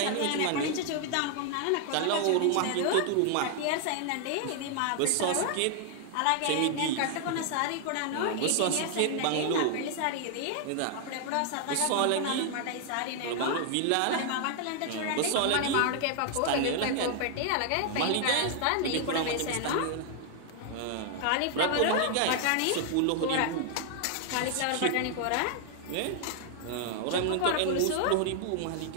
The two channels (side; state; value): both; different; correlation 0.00